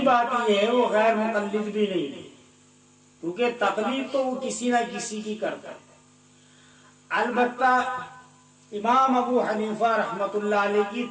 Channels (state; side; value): identical; both; correlation 1.00